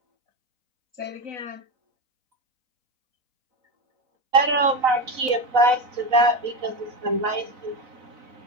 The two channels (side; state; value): left; late; 4.0 ms